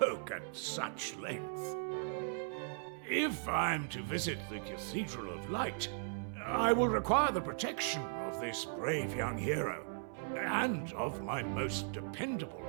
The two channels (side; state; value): left; silent; 53 dB below the other